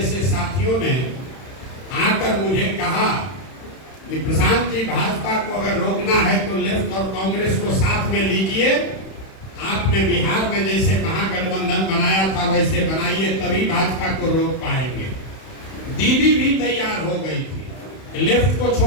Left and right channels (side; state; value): right; late; 31 ms